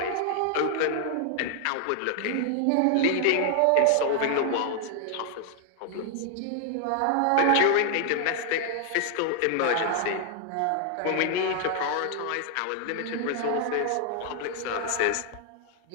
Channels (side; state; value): both; different; correlation 0.00